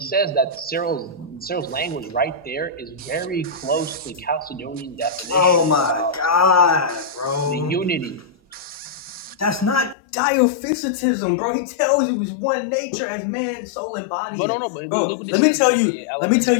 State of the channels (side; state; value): right; drops out; at 10.0 s